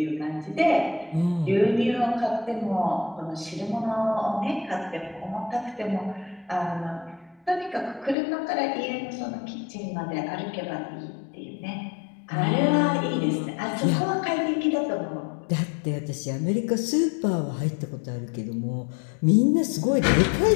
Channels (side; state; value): right; drops out; at 8.2 s